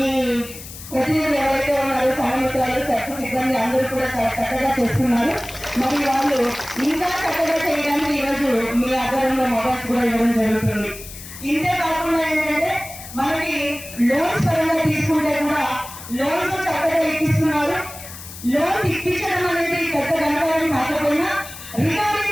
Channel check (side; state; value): left; noise; hiss, 14 dB below the sound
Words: ప్రతినిధులు ఎవరైతే ఉన్నారో సంఘమిత్రాలు, సర్వ సిబ్బంది అందరూ కూడా చాలా చక్కగా చేస్తున్నారు. మరి వాళ్ళు ఇంకా చక్కగా చేయడానికి ఈరోజు మీ ఆధారంలో మొబైల్స్ కూడా ఇవ్వడం జరుగుతుంది. ఇంతే కాకుండా ఏంటంటే మనకి లోన్స్ పరంగా తీసుకుంటే కూడా లోన్స్ చక్కగా ఇప్పిస్తున్నారు. లోన్స్ ఇప్పించడం అనేది పెద్ద గణకారం కాకపోయినా రికవరీ